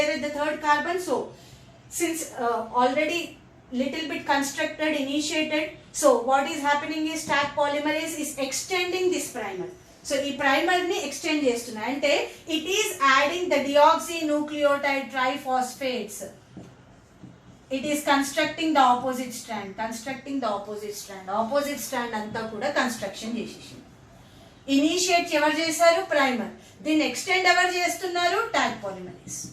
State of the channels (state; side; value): identical; both; correlation 1.00